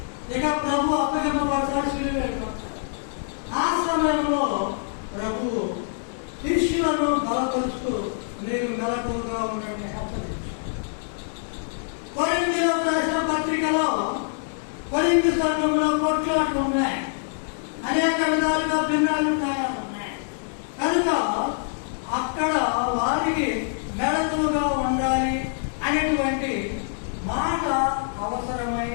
ఇక ప్రభు అప్పగింపబడతాడు, శిలువ వెళ్ళిపోతాడు. ఆ సమయంలో ప్రభు శిష్యులను బలపరుస్తూ మీరు మెలకువగా ఉండండి హెచ్చరించారు. కొరింథీయులకు రాసిన పత్రికలో కొరింథీ సంఘంలో కొట్లాట్లు ఉన్నాయి, అనేక విధాలుగా భిన్నాభిప్రాయాలు ఉన్నాయి. కనుక అక్కడ వారికి మెలకువగా ఉండాలి అనేటువంటి మాట అవసరమై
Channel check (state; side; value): silent; right; digital silence